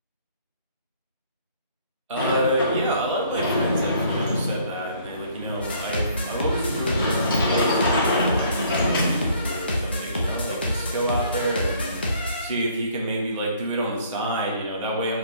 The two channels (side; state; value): both; inverted; correlation -0.60